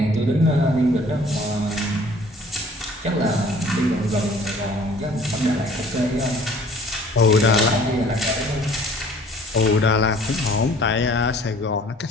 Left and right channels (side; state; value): both; normal; correlation 0.53